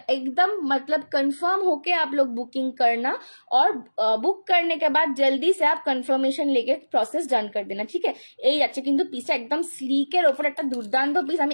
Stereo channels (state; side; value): inverted; both; correlation -1.00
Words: एकदम मतलब कंफर्म होके आप लोग बुकिंग करना, और बुक करने के बाद जल्दी से आप कंफर्मेशन लेके প্রসেস ডান করে দেনা, ঠিক আছে। এই যাচ্ছে কিন্তু পিসটা একদম স্লিকের ওপর একটা দুর্দান্ত পিস।